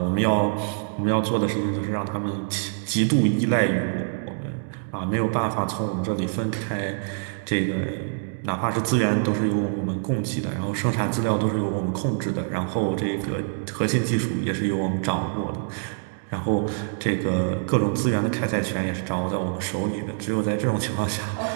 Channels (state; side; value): silent; left; digital silence